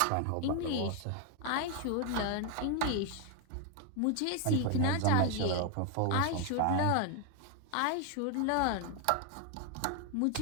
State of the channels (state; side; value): different; both; correlation 0.01